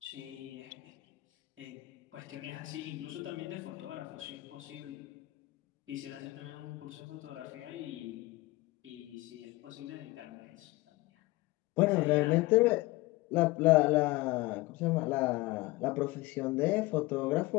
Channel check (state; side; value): quieter; right; 20.7 dB